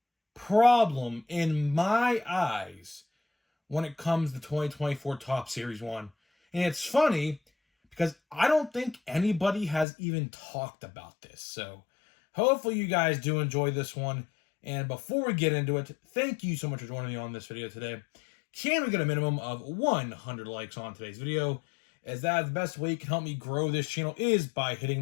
problem in my eyes when it comes to 2024 Top Series 1. And it's funny because I don't think anybody has even talked about this. So hopefully you guys do enjoy this one. And before we get into it, thank you so much for joining me on this video today. Can we get a minimum of 100 likes on today's video? As that is the best way you can help me grow this channel is by hitting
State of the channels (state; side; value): drops out; right; at 9.9 s